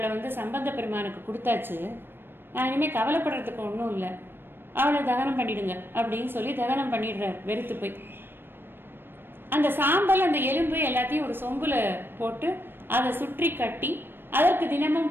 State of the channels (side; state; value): left; late; 0.099 ms